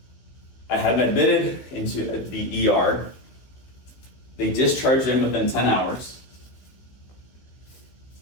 I had him admitted into the ER. They discharged him within 10 hours.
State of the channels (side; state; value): right; late; 15 ms